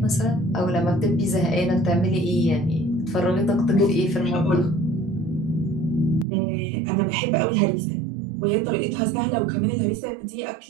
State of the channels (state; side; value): drops out; left; at 6.2 s